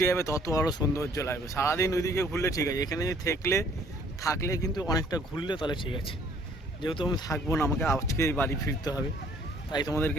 যাবে তত আরও সৌন্দর্য লাগবে। সারাদিন ওইদিকে ঘুরলে ঠিক আছে, এখানে যদি থাকলে কিন্তু অনেকটা ঘুরলে তাহলে ঠিক আছে। যেহেতু আমি থাকবো না, আমাকে আজকেই বাড়ি ফিরতে হবে, তাই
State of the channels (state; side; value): normal; both; correlation 0.59